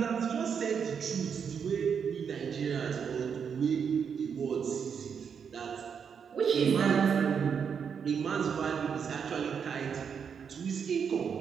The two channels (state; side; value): quieter; left; 6.9 dB